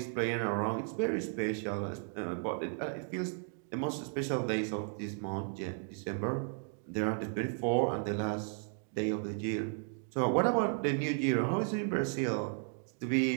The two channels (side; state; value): left; silent; 55 dB below the other